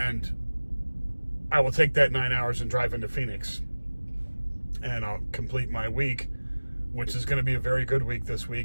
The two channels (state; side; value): inverted; both; correlation -1.00